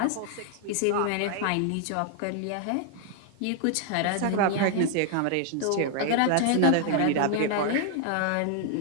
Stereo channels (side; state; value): both; different; correlation 0.00